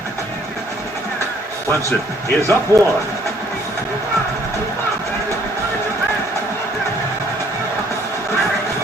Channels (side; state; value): both; normal; correlation 0.62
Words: Clemson is up 1.